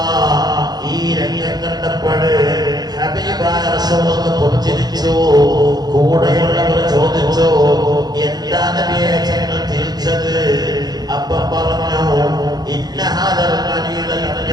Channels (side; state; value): left; late; 0.19 ms